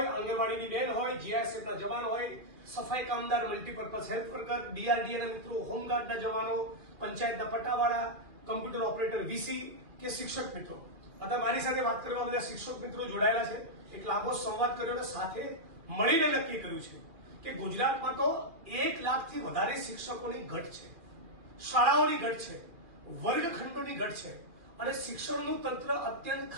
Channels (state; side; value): late; left; 2.4 ms